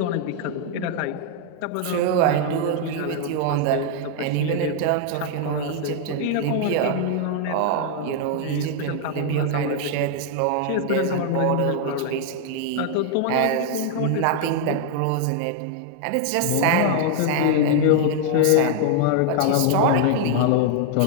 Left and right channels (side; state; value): both; different; correlation 0.00